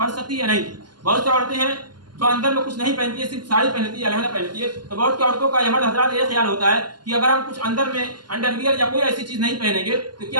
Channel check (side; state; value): left; late; 0.71 ms